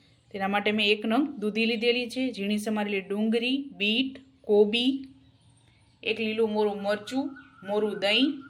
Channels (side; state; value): both; identical; correlation 1.00